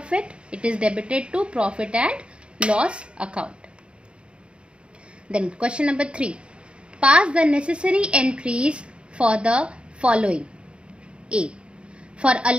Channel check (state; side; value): late; left; 0.056 ms